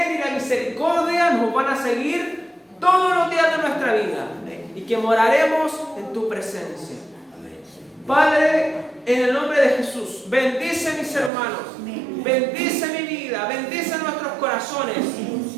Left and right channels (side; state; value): left; drops out; at 11.3 s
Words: y la misericordia nos van a seguir todos los días de nuestra vida. Y que moraremos en tu presencia. Padre, en el nombre de Jesús, bendice a mis hermanos, bendice mi vida, bendice nuestros corazones,